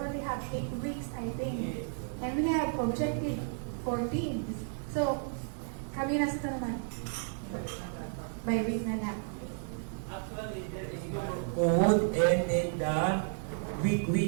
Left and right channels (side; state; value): left; silent; digital silence